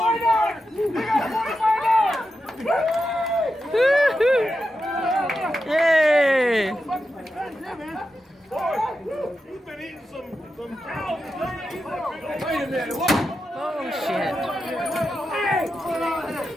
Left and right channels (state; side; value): normal; both; correlation 0.89